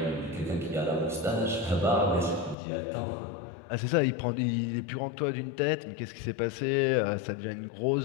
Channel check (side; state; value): right; drops out; at 2.6 s